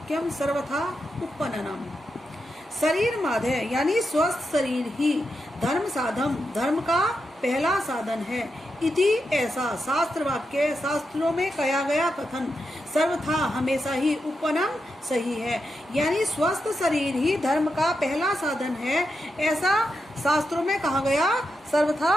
सर्वथा उपपन्नम। शरीर माधे यानी स्वस्थ शरीर ही धर्म साधम धर्म का पहला साधन है। इति ऐसा शास्त्र वाक्य शास्त्रों में कहा गया कथन सर्वथा हमेशा ही उपपन्नम सही है, यानी स्वस्थ शरीर ही धर्म का पहला साधन है, ऐसा शास्त्रों में कहा गया सर्वथा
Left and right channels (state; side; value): normal; both; correlation 0.86